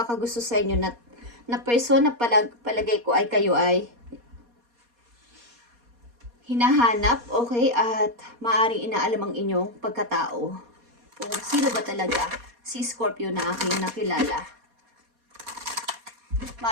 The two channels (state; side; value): late; left; 4.2 ms